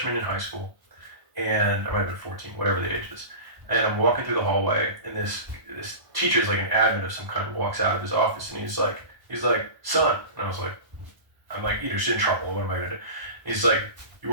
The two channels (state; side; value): late; left; 1.1 ms